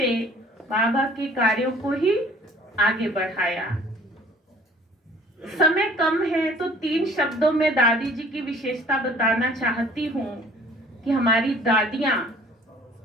बाबा के कार्यों को ही आगे बढ़ाया। समय कम है तो 3 शब्दों में दादी जी की विशेषता बताना चाहती हूँ कि हमारी दादियां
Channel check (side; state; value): both; normal; correlation 0.53